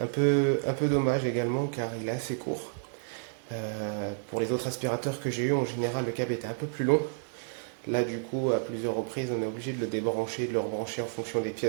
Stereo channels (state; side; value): silent; left; digital silence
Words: peu dommage également, car il est assez court. Pour les autres aspirateurs que j'ai eu, en général, le câble était un peu plus long. Là, du coup, à plusieurs reprises, on est obligé de le débrancher, de le rebrancher en fonction des